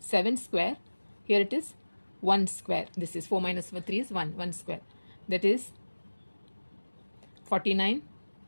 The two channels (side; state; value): both; inverted; correlation -1.00